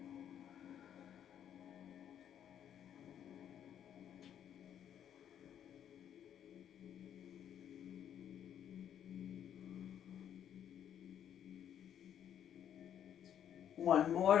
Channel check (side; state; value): right; quieter; 9.7 dB